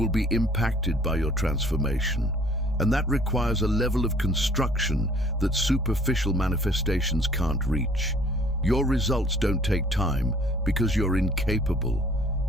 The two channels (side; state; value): both; normal; correlation 0.56